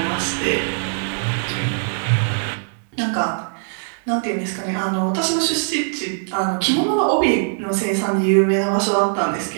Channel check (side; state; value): left; silent; digital silence